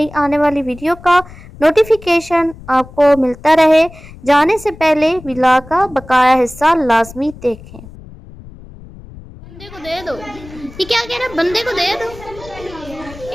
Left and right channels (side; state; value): left; noise; rumble, 18 dB below the sound